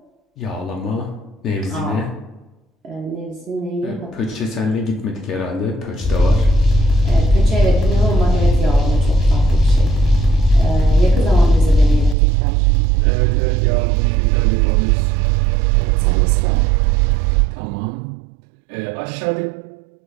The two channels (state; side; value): drops out; left; at 12.2 s